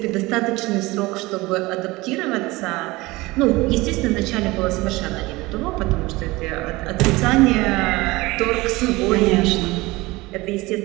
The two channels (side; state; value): left; quieter; 21.2 dB